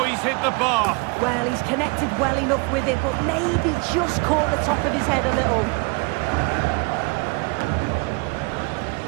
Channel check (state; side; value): quieter; left; 30.0 dB